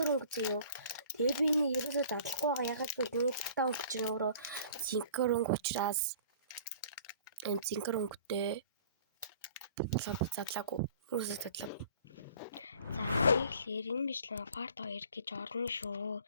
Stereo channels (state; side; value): inverted; both; correlation -0.49